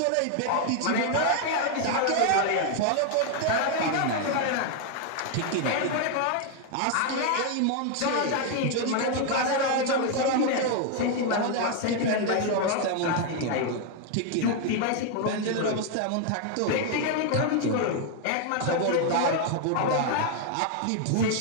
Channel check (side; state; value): both; different; correlation 0.01